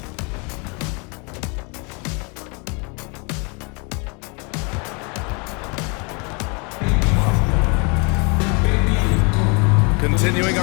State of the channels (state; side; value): quieter; right; 32.3 dB